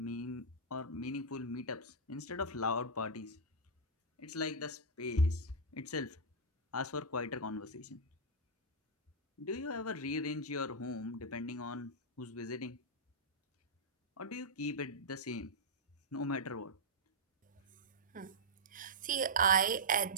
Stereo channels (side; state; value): both; normal; correlation -0.08